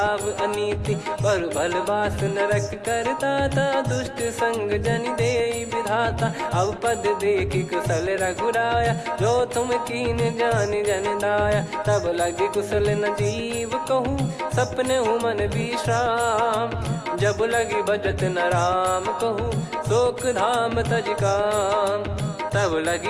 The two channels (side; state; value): both; identical; correlation 1.00